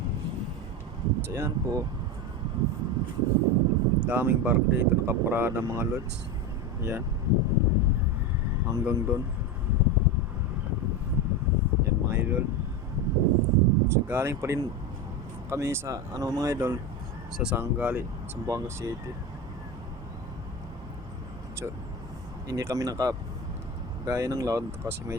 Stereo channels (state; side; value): normal; both; correlation 0.19